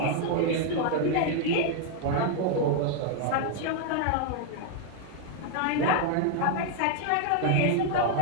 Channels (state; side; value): different; both; correlation 0.00